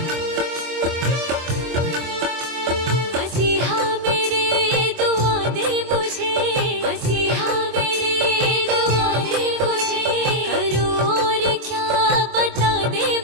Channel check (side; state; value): left; late; 24 ms